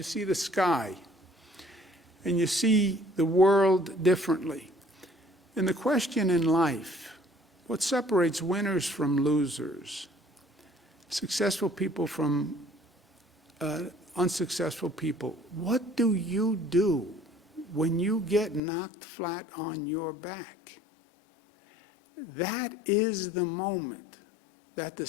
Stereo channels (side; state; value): right; drops out; at 18.6 s